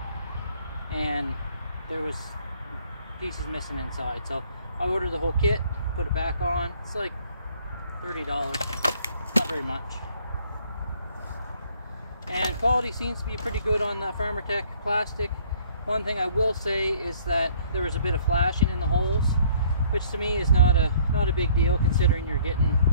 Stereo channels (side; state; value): both; inverted; correlation -0.59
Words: and there was pieces missing inside. So I ordered the whole kit, put it back on. It's like $30, not very much. And quality seems to be pretty good on the Farmer Tech plastic. One thing I will say is that there was a bit of flashing in the holes, which to me is not a big deal considering you're getting